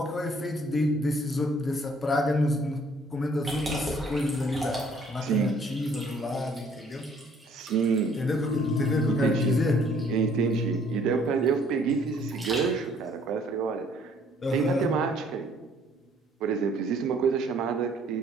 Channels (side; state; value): both; normal; correlation 0.60